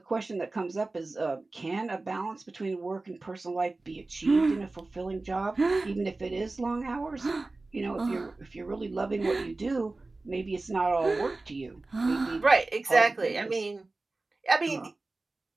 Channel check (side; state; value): left; quieter; 3.3 dB